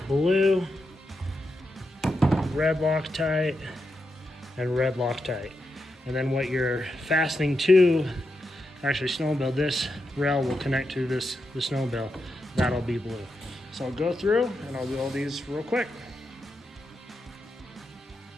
blue, red Loctite, and red Loctite. And then what you're fastening to, actually Snowmobile, this rail will connect to the Snowmobile. That'll be blue. So I'll go through and I'll do all these real quick.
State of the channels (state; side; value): normal; both; correlation 0.86